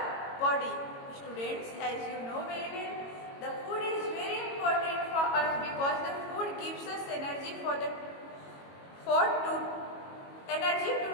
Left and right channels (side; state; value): right; late; 22 ms